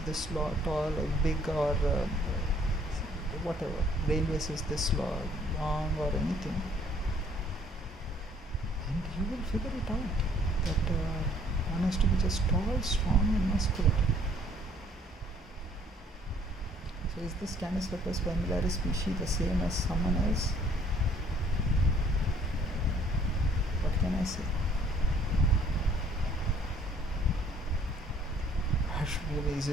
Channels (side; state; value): both; normal; correlation 0.60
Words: this tall or big or whatever. Railways is this long or anything, and you will figure it out that one has to be just tall, strong, and muscular. So, is this Canis lupus familiaris species the same as someone else? What can I say? Is